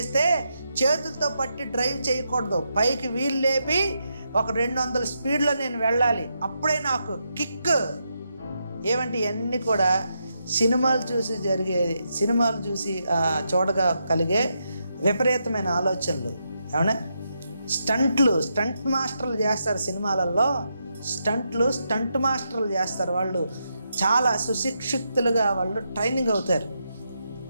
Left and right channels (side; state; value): both; inverted; correlation -0.83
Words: చేతులతో పట్టి డ్రైవ్ చేయకూడదు, పైకి వీల్ లేపి ఒక 200 స్పీడ్లో నేను వెళ్ళాలి, అప్పుడే నాకు కిక్. ఏమంటే ఇవన్నీ కూడా సినిమాలు చూసి చూడగా కలిగే విపరీతమైన ఆలోచనలు. ఏమన్నా స్టంట్ మాస్టర్లు చేస్తారు సినిమాలలో, స్టంట్ మాస్టర్లు చేస్తారు. వాళ్ళు చాలా సుశిక్షితులుగా వాళ్ళు ట్రైనింగ్ అవుతారు.